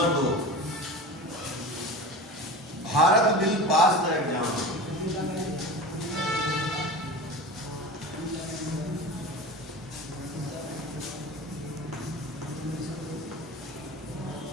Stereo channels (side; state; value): both; normal; correlation 0.32